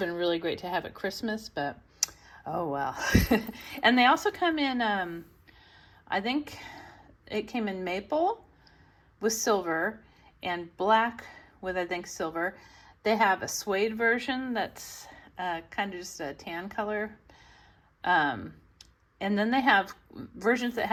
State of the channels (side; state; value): both; identical; correlation 1.00